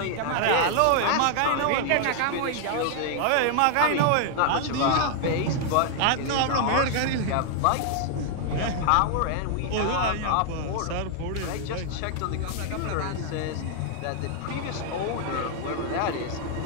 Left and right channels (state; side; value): different; both; correlation 0.00